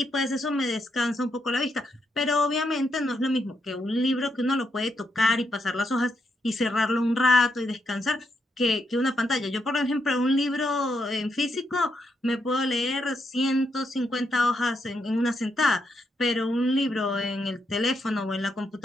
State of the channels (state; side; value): normal; both; correlation 0.80